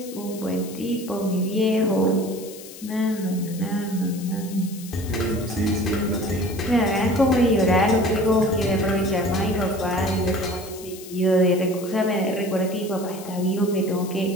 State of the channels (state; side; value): noise; left; hiss, 16 dB below the sound